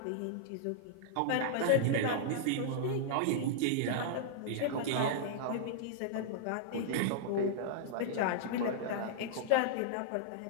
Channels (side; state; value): both; different; correlation -0.02